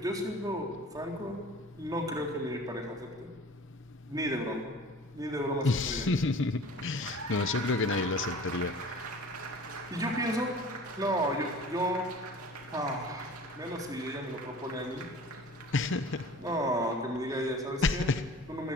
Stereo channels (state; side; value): normal; both; correlation 0.43